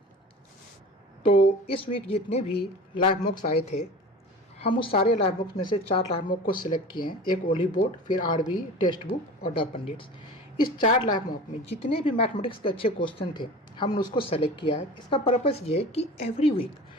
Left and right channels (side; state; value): both; normal; correlation 0.36